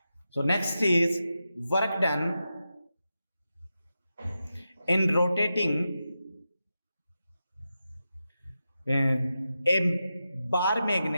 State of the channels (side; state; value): both; inverted; correlation -0.90